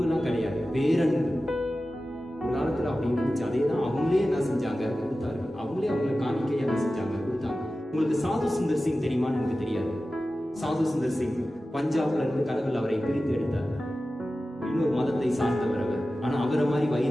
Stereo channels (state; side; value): normal; both; correlation 0.95